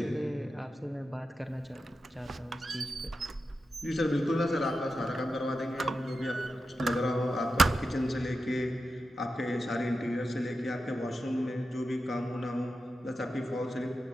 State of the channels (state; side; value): normal; both; correlation 0.90